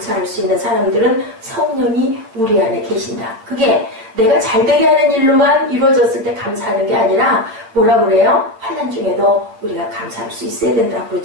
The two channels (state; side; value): late; left; 9.0 ms